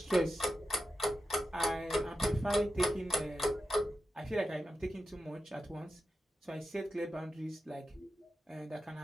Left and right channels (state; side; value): normal; both; correlation 0.90